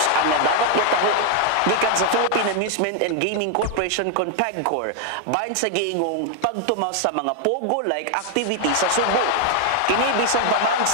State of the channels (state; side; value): different; both; correlation 0.00